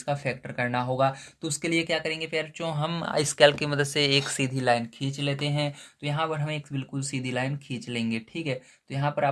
का फैक्टर करना होगा। तो उसके लिए क्या करेंगे प्यारे बच्चों, हम इस कैल की मदद से एक सीधी लाइन खींच लेते हैं। तो यहाँ पर हम एक बिल्कुल सीधी लाइन खींच लेंगे। ठीक है, तो यहाँ पर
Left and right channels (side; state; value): both; identical; correlation 1.00